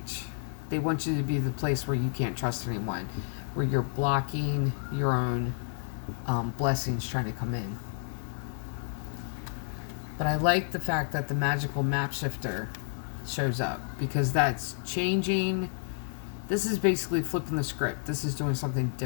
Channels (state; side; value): silent; right; digital silence